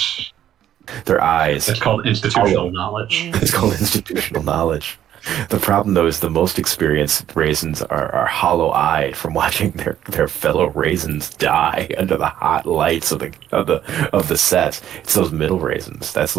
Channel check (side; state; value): left; quieter; 11.1 dB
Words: Their eyes. It's called institutional knowledge. It's called institutional knowledge. The problem, though, is the most experienced raisins are hollow-eyed from watching their fellow raisins die under the hot lights of the set. It's those middle raisins. That's